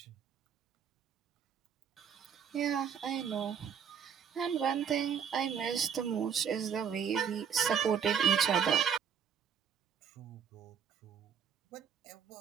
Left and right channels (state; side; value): quieter; left; 7.6 dB